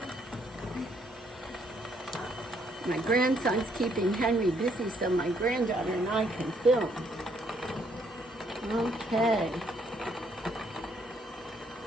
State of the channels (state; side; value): normal; both; correlation 0.69